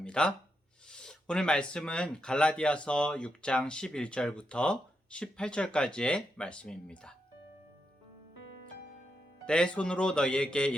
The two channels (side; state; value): both; normal; correlation 0.84